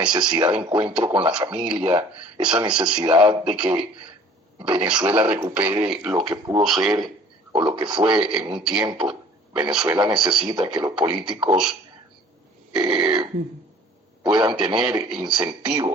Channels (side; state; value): both; normal; correlation 0.50